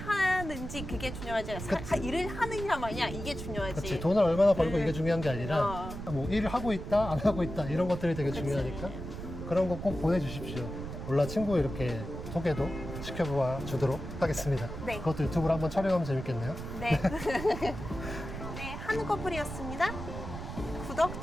그게 중요하지. 일을 하느냐 마냐 이게 중요하지. 그치, 돈을 얼마나 벌고 이게 중요한 게 아니라 어. 뭐 일을 하고 있다, 안 하고 있다 이런 것들이 되게 그치. 중요하니까 그런 거 꼭 보내주십시오. 올라 친구 이렇게 소개도 시켜보아 주도록 하겠습니다. 네. 그것도 유튜브로 한번 촬영하면 재밌겠네요. 네. 네, 한꺼풀이었습니다. 구독,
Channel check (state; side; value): noise; right; rumble, 8 dB below the sound